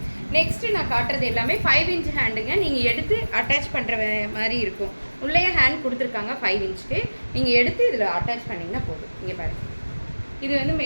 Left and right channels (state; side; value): inverted; both; correlation -1.00